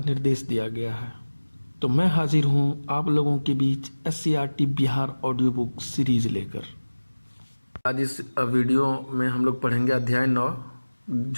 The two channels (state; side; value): inverted; both; correlation -1.00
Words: दिया गया है। तो मैं हाजिर हूं आप लोगों के बीच SCERT Bihar audio book series लेकर। आज इस वीडियो में हम लोग पढ़ेंगे अध्याय 9